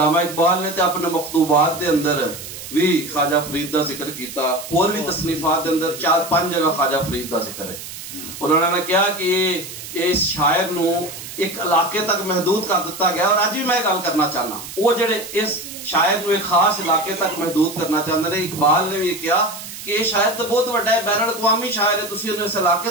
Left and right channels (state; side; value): noise; right; hiss, 11 dB below the sound